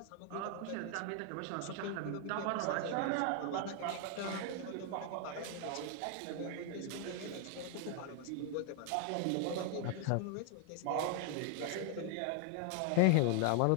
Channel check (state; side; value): different; both; correlation 0.00